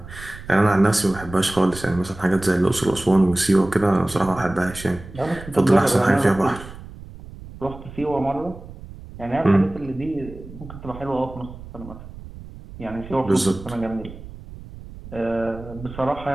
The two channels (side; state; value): right; noise; rumble, 15 dB below the sound